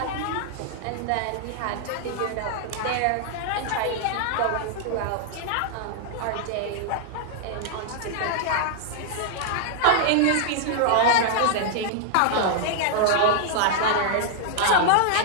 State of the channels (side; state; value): both; different; correlation -0.01